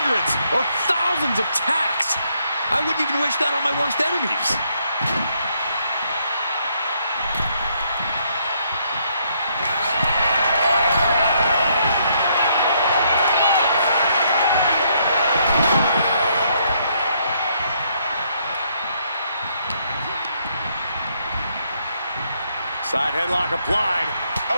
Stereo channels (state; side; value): inverted; both; correlation -0.72